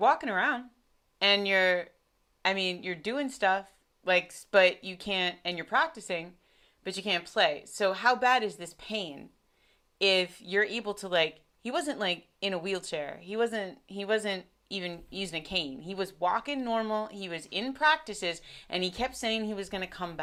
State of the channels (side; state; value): both; identical; correlation 1.00